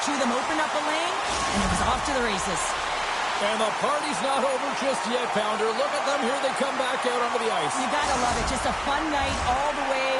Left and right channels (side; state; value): both; identical; correlation 1.00